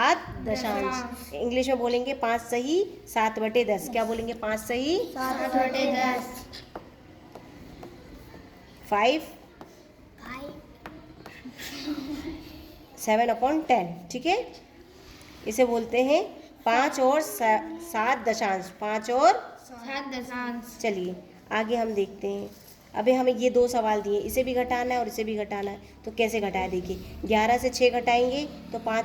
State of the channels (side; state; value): both; identical; correlation 1.00